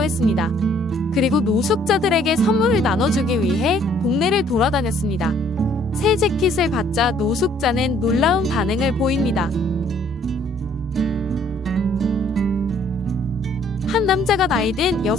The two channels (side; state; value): both; normal; correlation 0.62